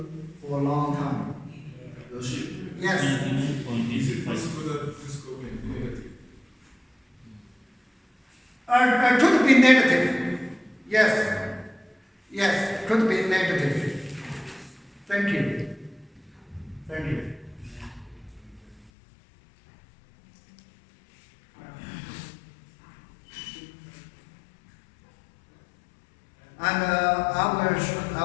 for a long time. Yes. 99.85. Could be negative. Yes. Yes, could be negative. Thank you. Thank you. And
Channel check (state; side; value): drops out; right; at 18.9 s